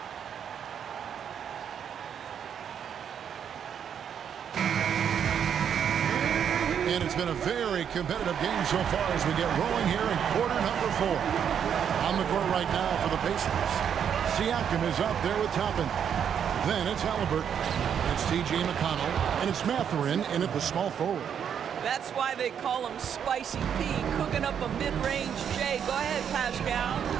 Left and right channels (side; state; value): left; quieter; 8.3 dB